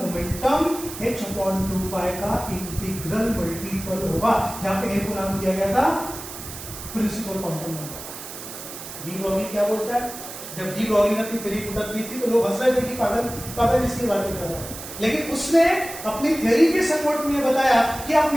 h/2 पाई का इंटीग्रल मल्टीपल होगा, जहां पे n को नाम दिया गया था principal quantum number. De Broglie क्या बोलता है, जब डी ब्रॉगली ने अपनी थ्योरी पुटअप की थी तो लोग हंस रहे थे कि पागल इसकी बातें कर रहा है, लेकिन उसने अपनी थ्योरी के सपोर्ट में बताया कि आप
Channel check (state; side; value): noise; right; hiss, 11 dB below the sound